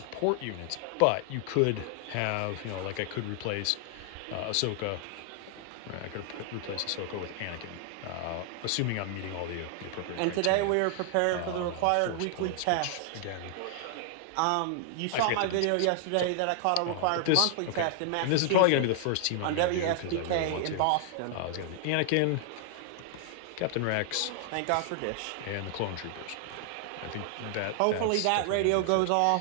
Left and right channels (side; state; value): both; different; correlation 0.00